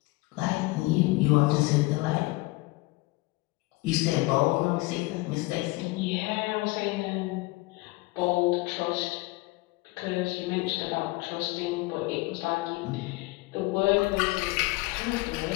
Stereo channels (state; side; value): quieter; right; 22.3 dB